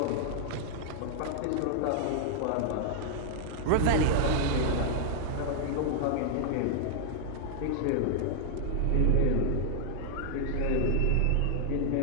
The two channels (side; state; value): both; different; correlation -0.01